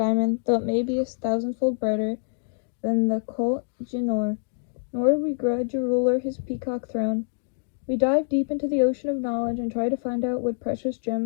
though it may be 1,000-fold brighter than the Koh Jinor, nor do we grudge a ruler his peacock throne. We dive deep into the ocean of knowledge and try to find out the precious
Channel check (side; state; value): right; silent; digital silence